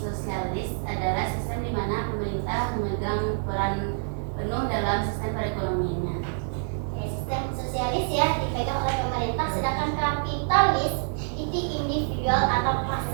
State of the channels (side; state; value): left; silent; 60 dB below the other